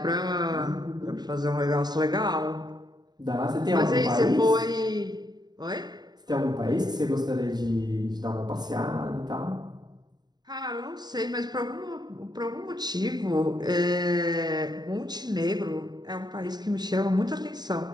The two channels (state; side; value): late; left; 0.20 ms